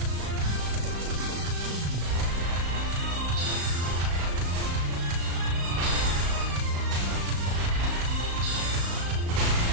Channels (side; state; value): left; late; 35 ms